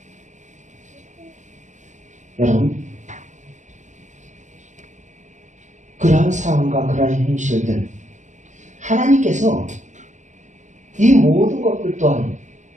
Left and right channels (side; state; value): left; late; 0.35 ms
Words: 여러분, 그러한 상황과 그러한 현실들, 하나님께서 이 모든 것들 또한